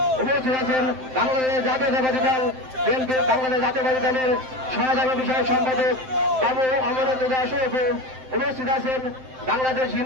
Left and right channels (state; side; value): late; left; 7.7 ms